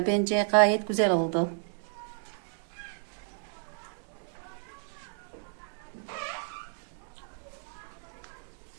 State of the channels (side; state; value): left; silent; digital silence